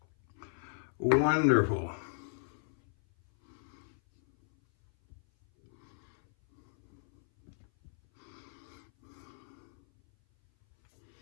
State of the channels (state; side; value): silent; right; 55 dB below the other